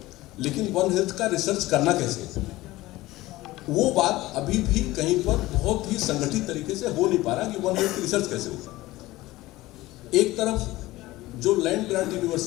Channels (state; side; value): quieter; right; 18.1 dB